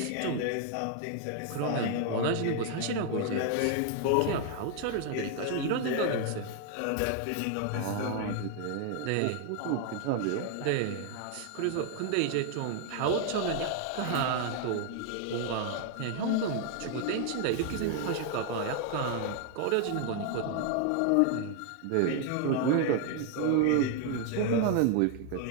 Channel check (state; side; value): different; both; correlation 0.00